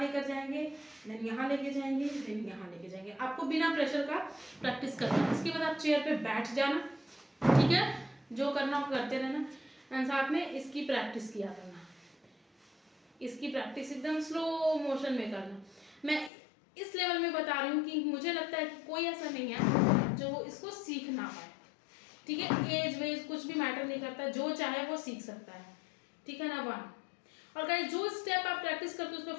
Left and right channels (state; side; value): drops out; right; at 16.3 s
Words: लेकर जाएंगे, देन यहाँ लेके जाएंगे, देन यहाँ लेके जाएंगे। आपको बिना प्रेशर का प्रैक्टिस करना है। इसके बाद आप चेयर पे बैठ जाना, ठीक है। जो करना हो करते रहना एंड साथ में इसकी प्रैक्टिस किया करना, इसकी प्रैक्टिस एकदम स्लो मोशन में करना। मैं इस लेवल में बता रही हूँ कि मुझे लगता है कि कोई ऐसा नहीं है जो इसको सीख ना पाए, ठीक है। एज वेज कुछ भी मैटर नहीं करता, जो चाहे वो सीख सकता है, ठीक है ना। 1, और गाइस जो स्टेप आप प्रैक्टिस करते हो उस पर